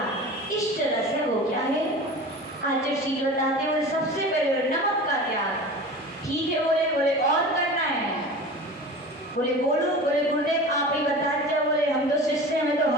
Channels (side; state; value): both; normal; correlation 0.35